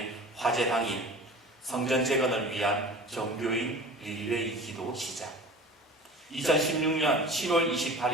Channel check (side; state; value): both; normal; correlation 0.39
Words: 화재 당일 성전 재건을 위한 정교인 릴레이 기도 시작. 2016년 7월